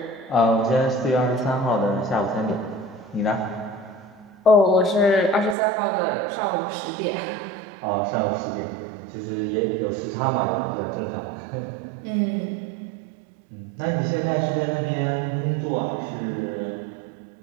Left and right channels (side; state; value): left; drops out; at 5.6 s